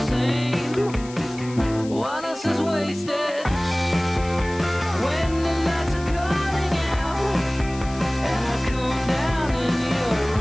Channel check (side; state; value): left; noise; hiss, 18 dB below the sound